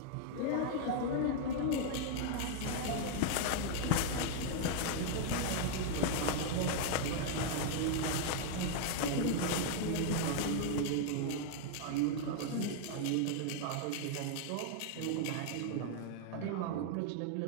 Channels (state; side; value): different; both; correlation 0.00